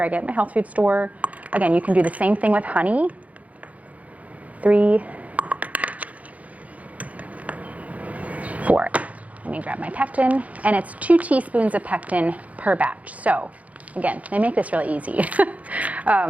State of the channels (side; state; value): left; late; 0.069 ms